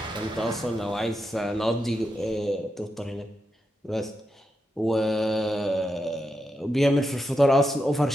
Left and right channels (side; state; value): both; normal; correlation 0.86